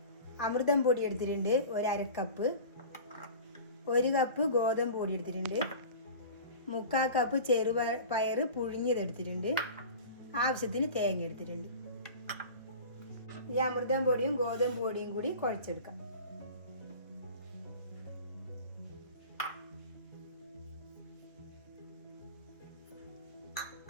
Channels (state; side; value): inverted; both; correlation -0.37